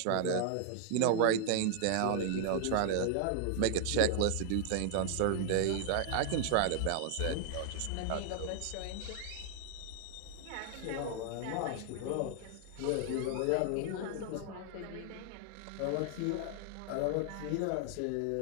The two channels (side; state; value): both; different; correlation 0.00